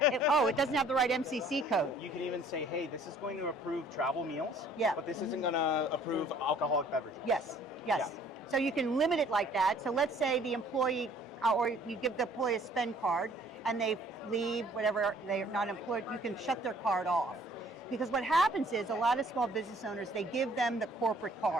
doesn't have the right MCC code. You can even say, hey, this is going to approve travel meals, Yeah. but this isn't going to approve alcoholic beverages. Yes. So you can limit it like that. So let's say the employee, or you give the employee a spend card and they leave, whatever, they're not employed, you can shut their card off. Because what happens is a lot of small business owners, they give them the corporate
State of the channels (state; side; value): normal; both; correlation 0.57